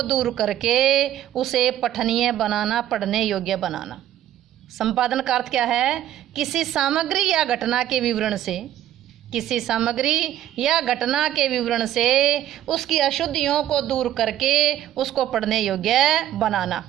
दूर करके उसे पठनीय बनाना, पढ़ने योग्य बनाना। संपादन का अर्थ क्या है? किसी सामग्री या घटना के विवरण से, किसी सामग्री या घटना के विवरण से उसकी अशुद्धियों को दूर करके उसको पढ़ने योग्य बनाना।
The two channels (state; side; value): quieter; left; 12.2 dB